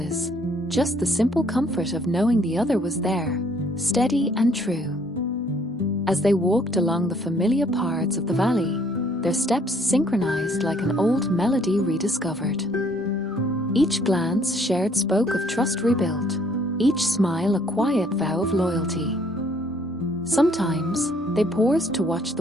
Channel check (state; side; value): normal; both; correlation 0.63